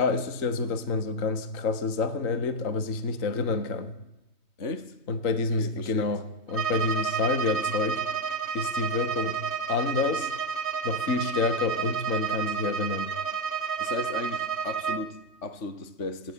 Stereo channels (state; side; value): late; right; 3.2 ms